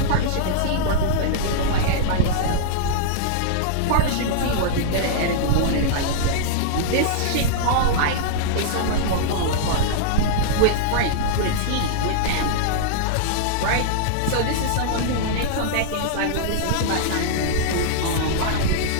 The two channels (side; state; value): both; different; correlation -0.01